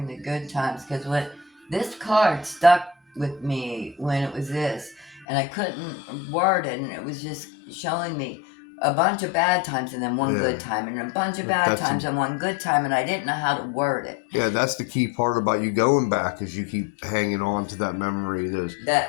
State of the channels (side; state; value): right; drops out; at 5.2 s